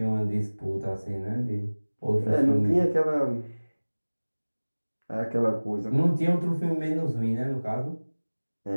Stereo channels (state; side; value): inverted; both; correlation -1.00